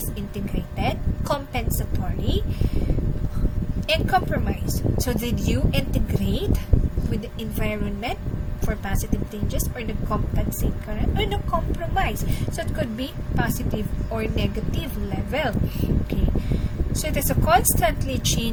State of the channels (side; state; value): both; identical; correlation 1.00